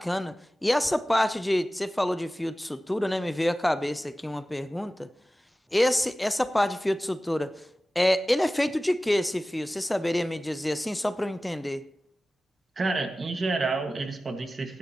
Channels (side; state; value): both; normal; correlation 0.96